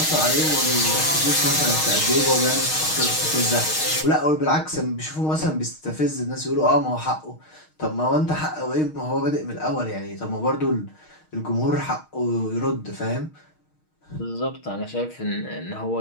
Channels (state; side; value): late; right; 6.4 ms